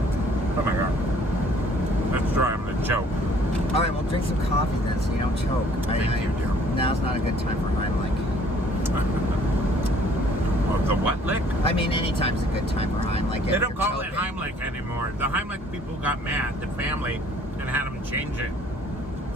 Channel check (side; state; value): both; normal; correlation 0.58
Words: Oh my god. That's dry. I'm gonna choke. All right, well, drink some coffee then, so you don't choke. Thank you, dear. Now's not a good time for Heimlich. Oh, the what lick? I mean, anytime's a good time for Heimlich. They don't call it Heimlich anymore. The Heimlich people got mad, the family, and had them change it.